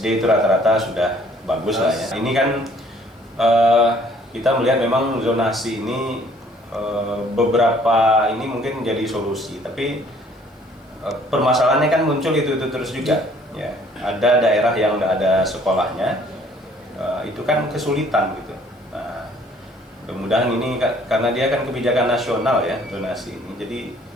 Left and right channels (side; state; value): both; normal; correlation 0.59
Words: itu rata-rata sudah bagus lah ya. Ini kan kita melihat memang zonasi ini beberapa ini mungkin jadi solusi, tapi permasalahannya kan muncul itu terus juga. Ya, ada daerah yang enggak ada sekolahnya, itu kan kesulitan gitu. Nah, mudah-mudahan ini karena dia kan kebijakan nasional ya zonasi ini. Jadi